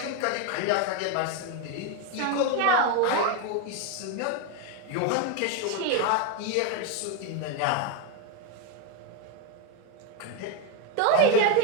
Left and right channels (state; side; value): different; both; correlation 0.02